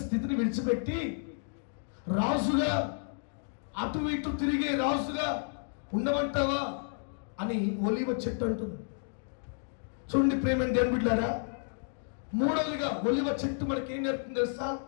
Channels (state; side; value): silent; right; digital silence